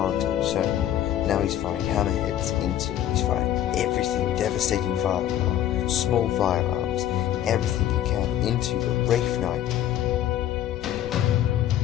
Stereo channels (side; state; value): right; quieter; 11.7 dB